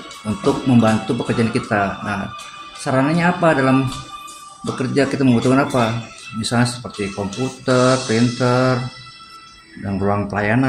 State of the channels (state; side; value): identical; both; correlation 1.00